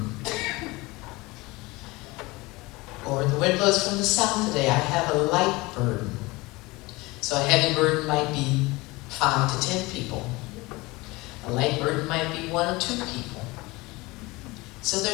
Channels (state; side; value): quieter; right; 22.5 dB